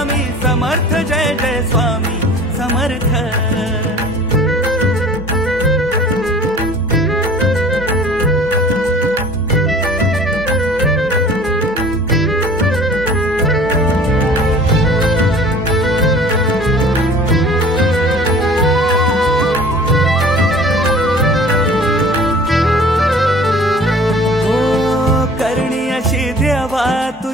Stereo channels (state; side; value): normal; both; correlation 0.47